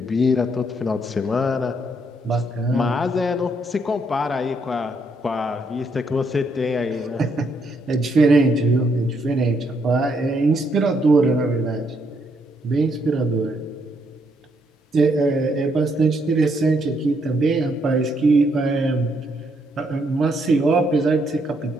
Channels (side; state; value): both; normal; correlation 0.74